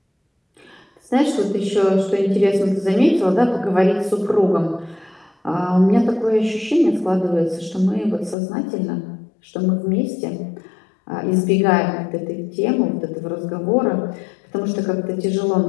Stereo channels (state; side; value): drops out; right; at 8.3 s